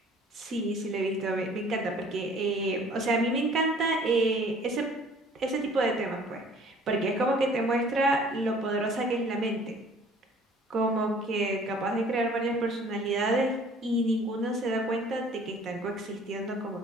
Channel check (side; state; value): both; normal; correlation 0.53